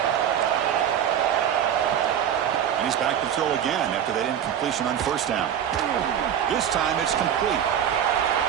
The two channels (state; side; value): quieter; left; 9.4 dB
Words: And he's back to throw again after that incompletion on first down. This time it's complete.